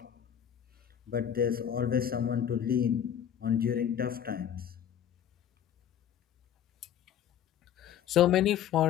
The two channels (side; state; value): right; quieter; 9.7 dB